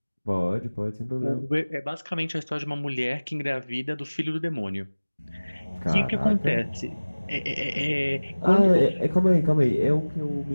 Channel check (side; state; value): both; inverted; correlation -1.00